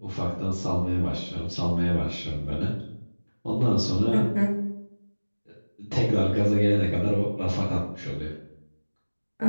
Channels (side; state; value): both; inverted; correlation -1.00